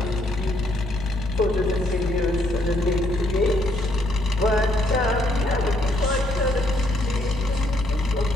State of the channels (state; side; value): noise; left; hum, 10 dB below the sound